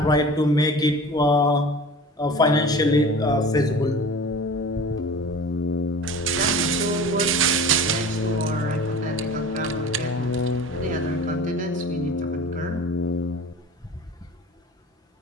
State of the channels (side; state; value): both; normal; correlation 0.38